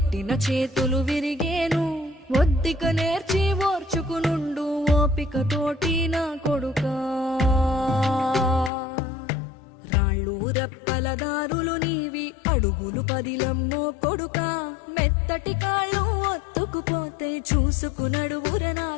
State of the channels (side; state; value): right; drops out; at 8.7 s